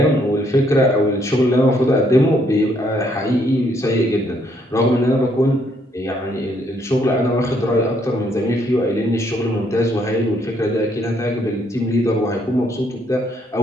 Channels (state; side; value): normal; both; correlation 0.70